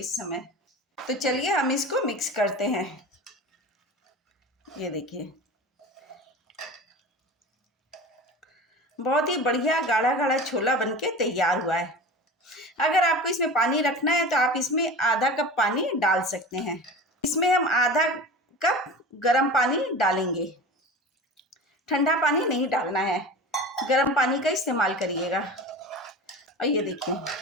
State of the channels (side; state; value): both; normal; correlation 0.33